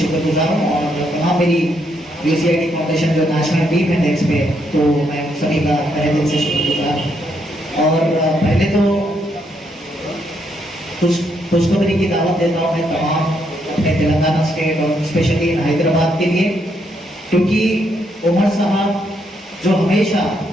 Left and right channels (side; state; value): both; normal; correlation 0.76